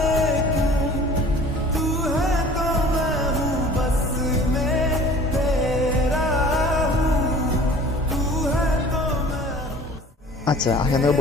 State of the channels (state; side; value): normal; both; correlation 0.46